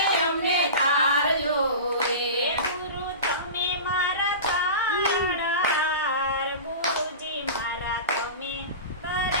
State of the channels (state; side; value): inverted; both; correlation -0.30